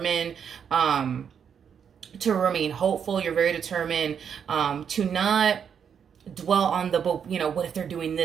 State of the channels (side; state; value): left; quieter; 7.6 dB